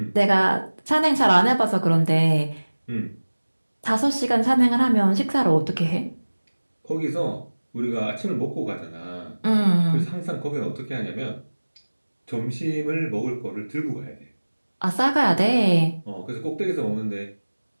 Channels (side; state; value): both; inverted; correlation -1.00